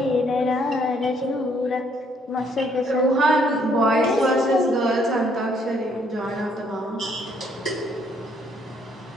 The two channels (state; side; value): normal; both; correlation 0.67